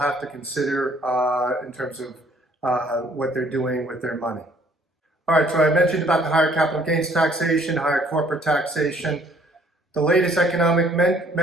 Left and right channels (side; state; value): both; normal; correlation 0.61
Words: to consider in terms of what they're doing with their money. All right, so I mentioned about the higher capital gains taxation, higher corporate taxation. The latest economic